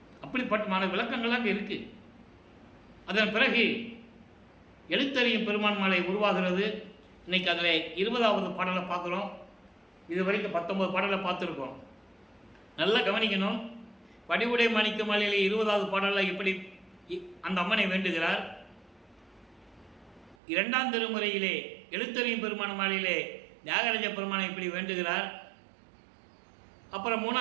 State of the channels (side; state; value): left; drops out; at 20.4 s